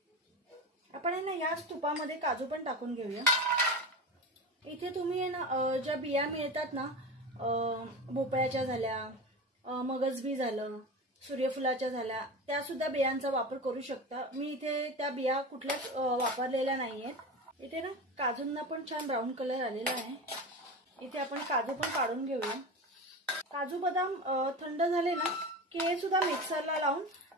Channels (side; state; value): both; normal; correlation 0.26